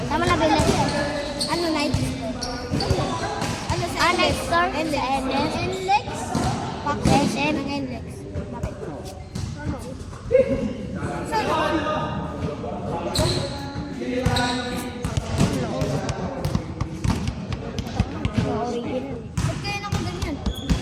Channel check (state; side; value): identical; both; correlation 1.00